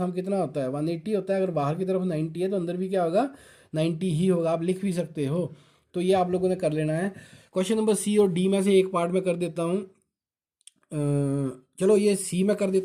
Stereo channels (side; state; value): both; identical; correlation 1.00